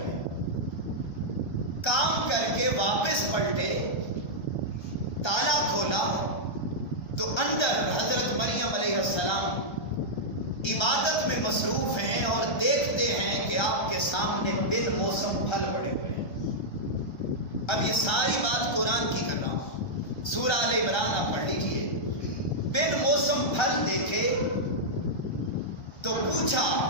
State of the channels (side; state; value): right; late; 1.3 ms